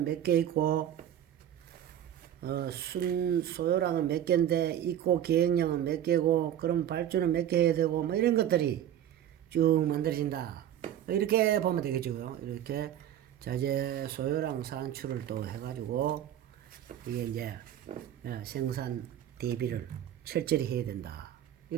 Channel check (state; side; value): quieter; left; 11.0 dB